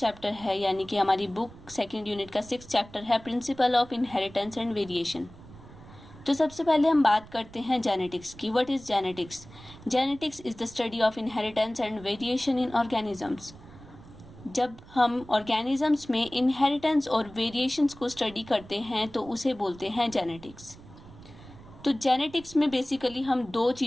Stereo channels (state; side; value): noise; right; rumble, 19 dB below the sound